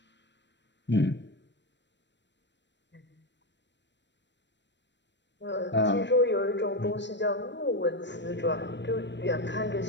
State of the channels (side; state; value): right; late; 0.52 ms